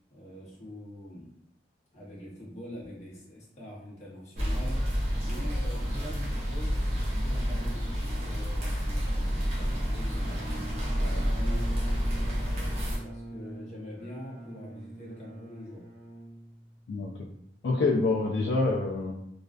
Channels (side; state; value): both; normal; correlation 0.84